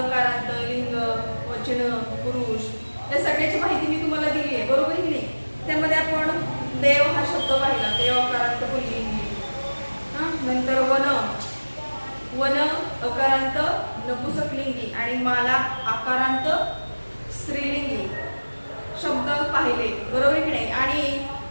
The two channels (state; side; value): inverted; both; correlation -1.00